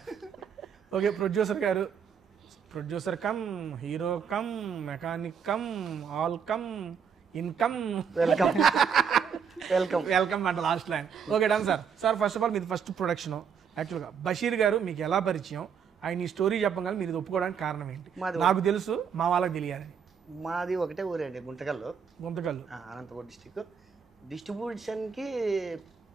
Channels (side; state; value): left; quieter; 7.0 dB